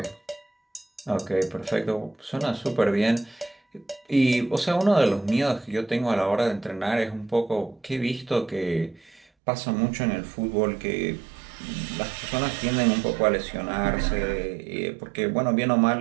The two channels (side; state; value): left; drops out; at 9.2 s